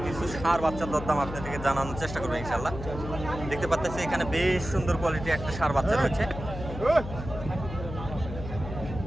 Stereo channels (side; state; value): left; noise; hum, 9 dB below the sound